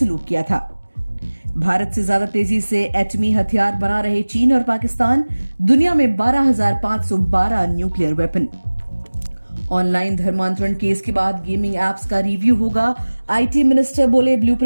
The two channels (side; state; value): both; inverted; correlation -1.00